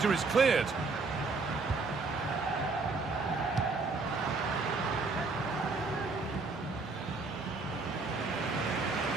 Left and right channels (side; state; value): left; quieter; 3.9 dB